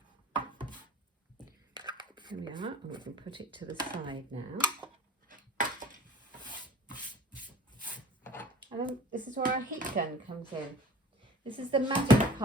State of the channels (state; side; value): normal; both; correlation 0.45